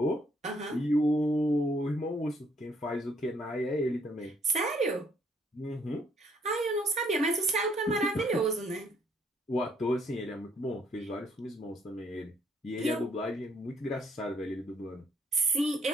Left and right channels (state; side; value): normal; both; correlation 0.67